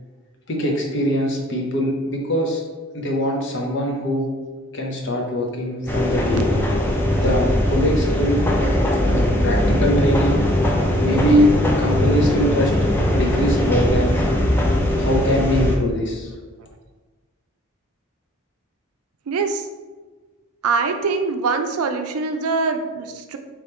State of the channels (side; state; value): both; normal; correlation 0.58